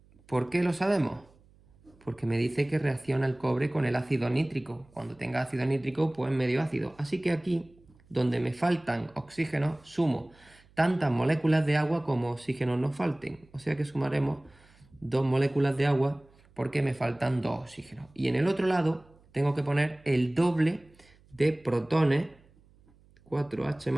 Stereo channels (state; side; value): noise; right; hum, 29 dB below the sound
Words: ¿Por qué lo sabemos? porque me dice que reacciona el cobre con el ácido nítrico. Cuando tenga ácido nítrico, pues medio ácido. Así que aquí, donde me faltan oxígenos, sumo tantas moléculas de agua como oxígenos nos falten. O sea que sumaremos 2 moléculas de agua porque me faltan 2 oxígenos. Y en el otro lado tengo que poner el doble de protones,